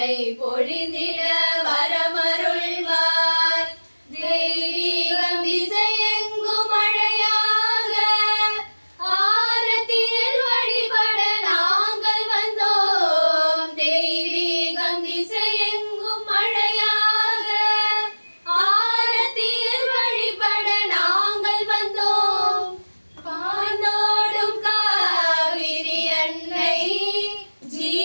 பொழிந்திட வரமருள்வார். தெய்வீகம் திசையெங்கும் மழையாக ஆரத்தியில் வழிபட நாங்கள் வந்தோம். தெய்வீகம் திசையெங்கும் மழையாக ஆரத்தியில் வழிபட நாங்கள் வந்தோம். பானோடும் காவிரி அன்னை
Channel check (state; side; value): inverted; both; correlation -1.00